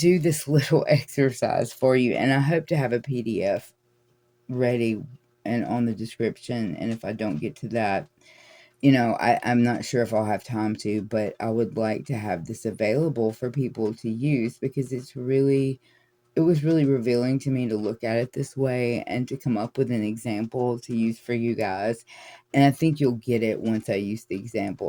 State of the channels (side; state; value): both; identical; correlation 1.00